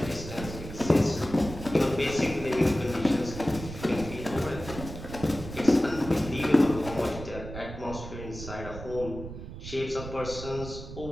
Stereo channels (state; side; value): noise; right; rumble, 10 dB below the sound